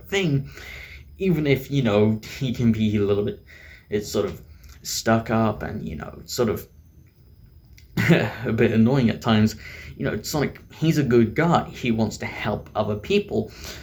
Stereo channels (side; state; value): both; identical; correlation 1.00